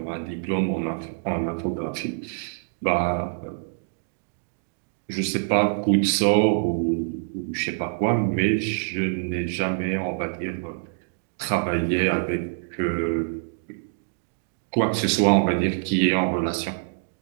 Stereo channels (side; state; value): left; silent; digital silence